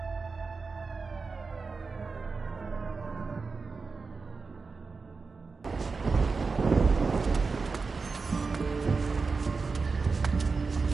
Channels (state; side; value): quieter; left; 4.5 dB